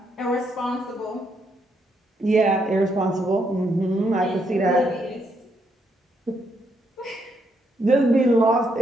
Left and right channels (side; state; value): both; normal; correlation 0.76